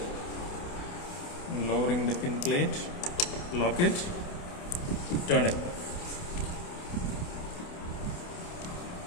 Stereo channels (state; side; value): late; right; 28 ms